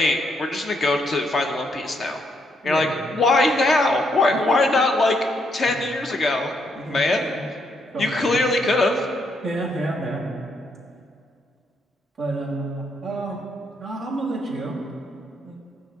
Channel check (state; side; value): normal; both; correlation 0.75